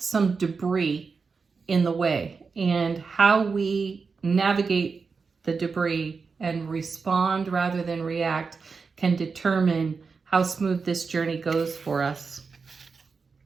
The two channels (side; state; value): left; quieter; 4.9 dB